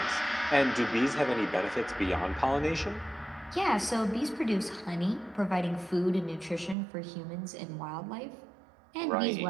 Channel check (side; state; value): left; drops out; at 6.8 s